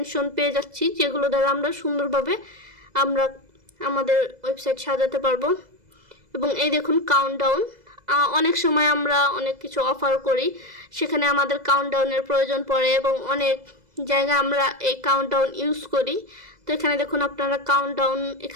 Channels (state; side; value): late; left; 2.0 ms